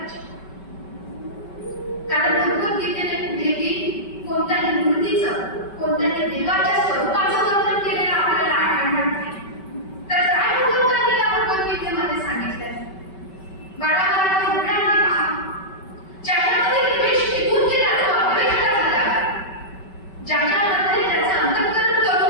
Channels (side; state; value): right; late; 5.2 ms